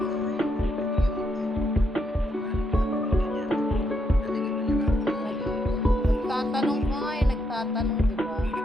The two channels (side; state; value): both; normal; correlation 0.79